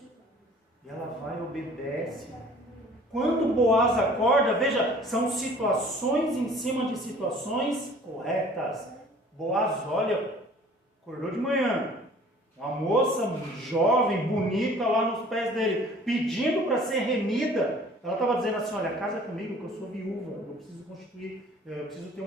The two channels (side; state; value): both; normal; correlation 0.51